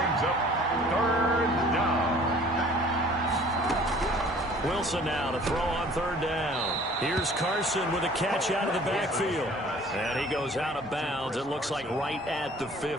up 3rd down. Wilson now to throw on 3rd down. Here's Carson with a catch out of the backfield. And he goes out of bounds. It looks like right at the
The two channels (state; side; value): normal; both; correlation 0.51